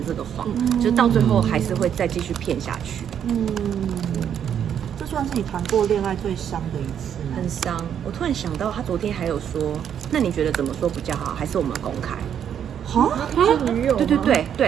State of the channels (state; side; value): quieter; left; 8.9 dB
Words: 这个谎，就是到最后还是会再继续骗下去。这算是你谈过恋爱最伤的一次吗？很伤。我突然想到，他昨天还有说，那你觉得怎么说比较好？还是我们公开？是女友吗？